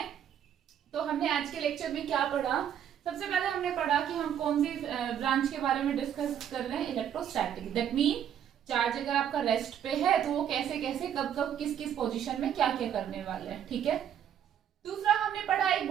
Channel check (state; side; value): quieter; left; 9.5 dB